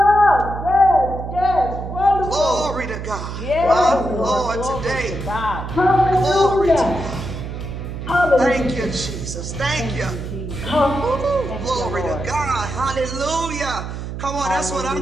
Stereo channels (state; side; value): noise; right; hum, 7 dB below the sound